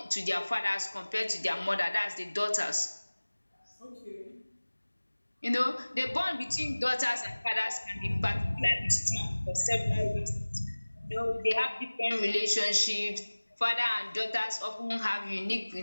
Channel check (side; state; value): both; inverted; correlation -1.00